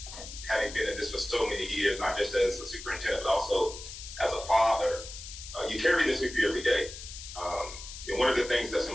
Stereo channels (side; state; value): left; noise; hiss, 12 dB below the sound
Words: having been in this for so many years, not just as a superintendent, but also as a father, you carry this with you every day. One of the things that's